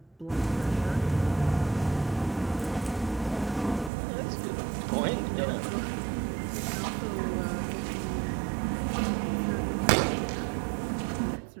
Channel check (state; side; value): drops out; left; at 3.9 s